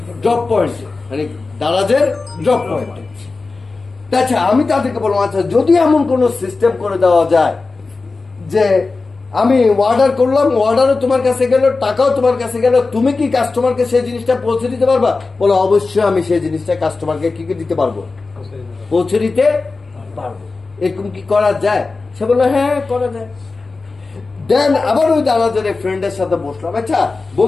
ড্রপ পয়েন্টে, মানে দারাজের ড্রপ পয়েন্টে। আচ্ছা, আমি তাদেরকে বললাম আচ্ছা যদি এমন কোন সিস্টেম করে দেওয়া যায় যে আমি অর্ডার করলাম, অর্ডারও তোমার কাছে গেল, টাকাও তোমার কাছে গেল, তুমি কি কাস্টমারকে সেই জিনিসটা পৌঁছে দিতে পারবা? বলো অবশ্যই আমি সেই জিনিসটা কাস্টমারকে কি দিতে পারবো, পৌঁছে দিতে পারবো। এরকম কি করা যায়? সে বললো হ্যাঁ করা যায়। দেন আবার ওই দারাজের ফ্রেন্ডের সাথে বসলাম, আচ্ছা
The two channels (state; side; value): quieter; right; 3.9 dB